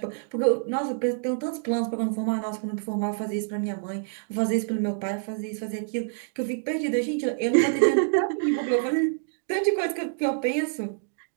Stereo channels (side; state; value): left; silent; digital silence